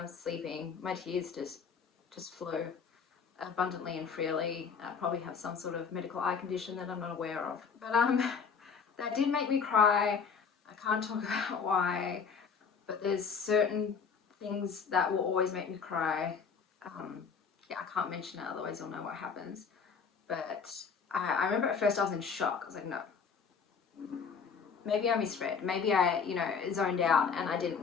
sleeping. My tears just flow abundantly and freely. I probably have some sort of medical eye condition that I'm not aware of. But that did make me cry. I can't talk about why, but there's certain things that will always make me cry. Yeah, I can't mention it, otherwise you'll know what happens. But I remember at first I was in shock. I was like, no. Maybe I misread. Maybe I, you know, zoned out and I didn't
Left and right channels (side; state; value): right; quieter; 6.0 dB